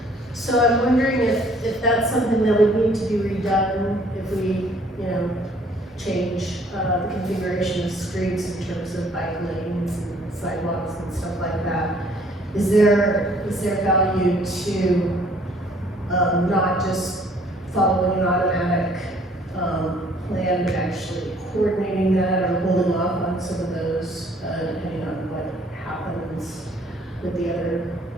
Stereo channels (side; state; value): both; normal; correlation 0.59